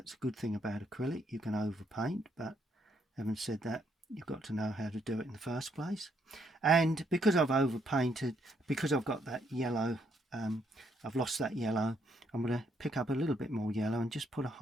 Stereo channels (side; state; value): both; normal; correlation 0.73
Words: a good thing about acrylic. You can overpaint, but having said that, you've got to know how to do it in the first place. And because I've overpainted, because I've got that yellow, I've lost that yellow, I'm going to pick up a little bit more yellow and just put a